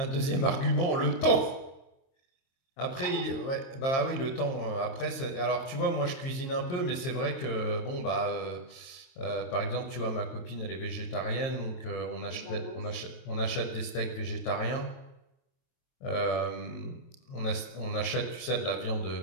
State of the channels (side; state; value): right; late; 23 ms